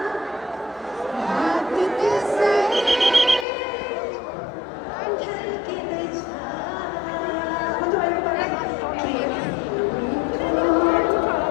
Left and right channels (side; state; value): right; drops out; at 3.5 s